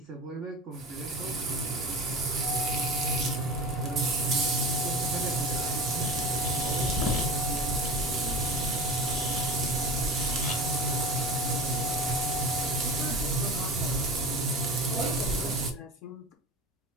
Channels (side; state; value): both; normal; correlation 0.32